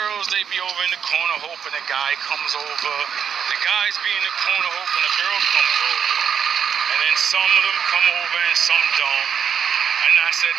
they be over in the corner hoping a guy comes over. The guys be in the corner hoping a girl comes over. And then some of them come over and some don't. And I said,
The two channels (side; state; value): left; quieter; 7.7 dB